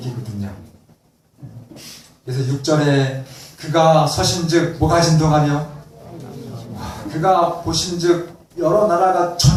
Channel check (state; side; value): identical; both; correlation 1.00